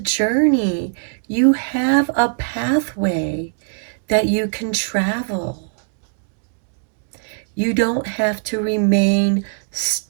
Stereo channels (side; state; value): left; silent; digital silence